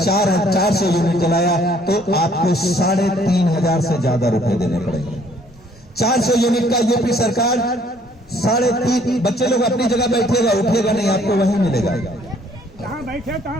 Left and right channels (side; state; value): both; normal; correlation 0.61